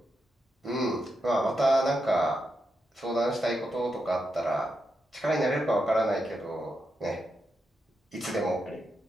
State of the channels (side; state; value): both; normal; correlation 0.85